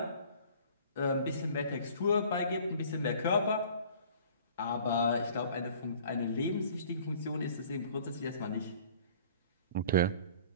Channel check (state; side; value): inverted; both; correlation -0.51